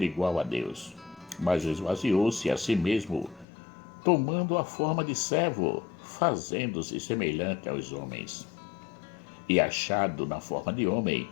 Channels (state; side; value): drops out; right; at 3.5 s